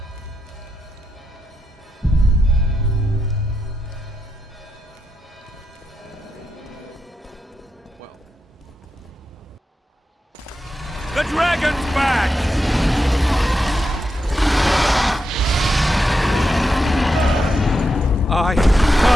The dragon's back! I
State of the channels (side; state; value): both; normal; correlation 0.85